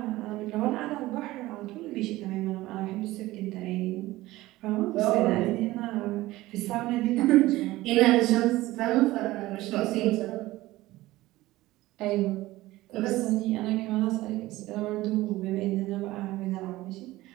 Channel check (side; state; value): left; quieter; 17.7 dB